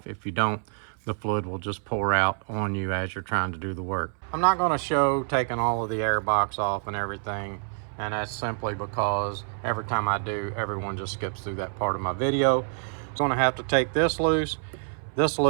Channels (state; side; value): silent; left; 60 dB below the other